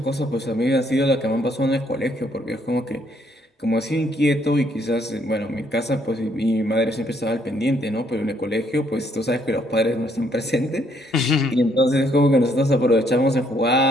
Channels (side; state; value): both; normal; correlation 0.69